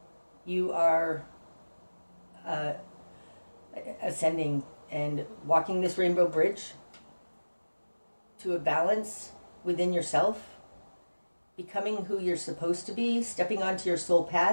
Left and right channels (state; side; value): inverted; both; correlation -1.00